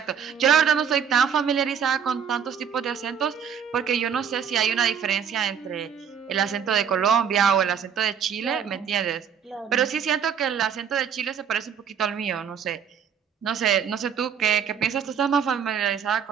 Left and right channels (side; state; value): left; quieter; 7.6 dB